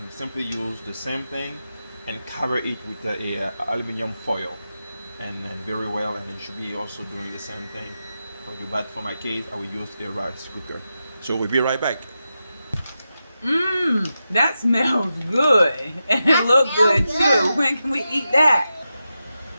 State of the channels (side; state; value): both; inverted; correlation -0.90